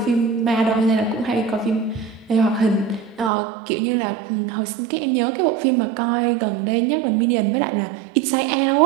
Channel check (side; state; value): left; drops out; at 3.3 s